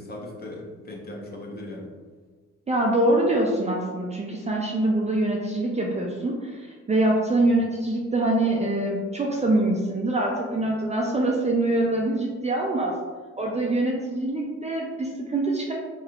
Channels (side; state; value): both; normal; correlation 0.51